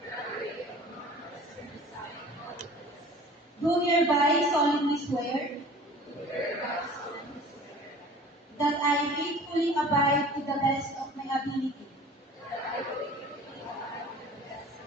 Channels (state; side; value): normal; both; correlation 0.44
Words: Do hereby solemnly swear that I faithfully abide to the best of my ability